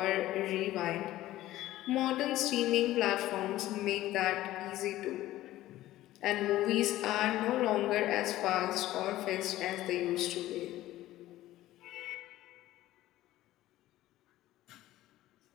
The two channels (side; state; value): right; quieter; 15.3 dB